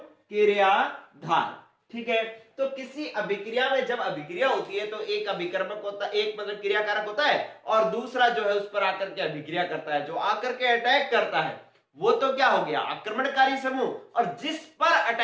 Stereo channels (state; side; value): identical; both; correlation 1.00